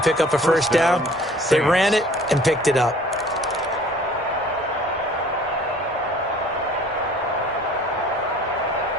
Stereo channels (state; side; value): normal; both; correlation 0.51